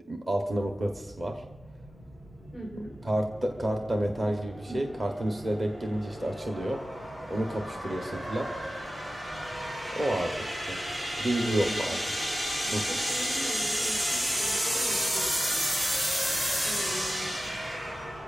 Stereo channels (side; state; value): both; normal; correlation 0.94